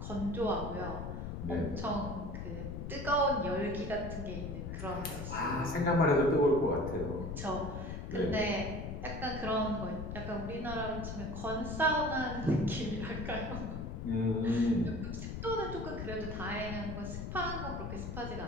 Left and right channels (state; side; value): noise; left; rumble, 6 dB below the sound